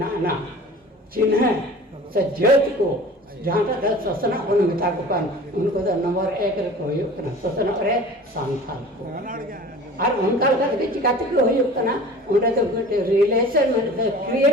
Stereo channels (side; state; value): both; normal; correlation 0.42